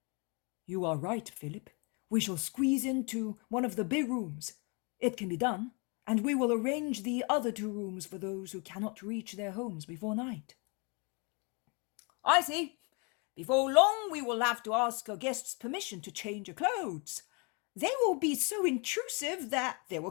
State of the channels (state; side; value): quieter; right; 32.3 dB